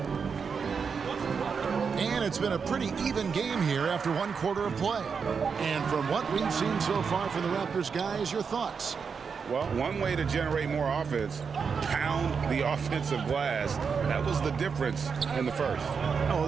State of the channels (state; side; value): quieter; left; 5.9 dB